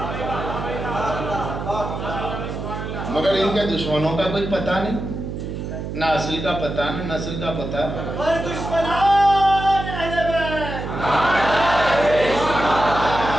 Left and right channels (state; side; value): noise; right; hum, 6 dB below the sound